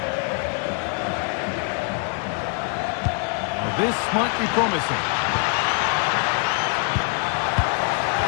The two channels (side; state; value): right; quieter; 39.9 dB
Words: Well, this might be promising.